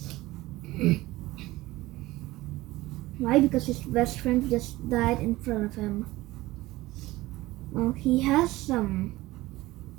Why? Because his best friend just died in front of him. Well, he has some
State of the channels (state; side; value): quieter; left; 18.5 dB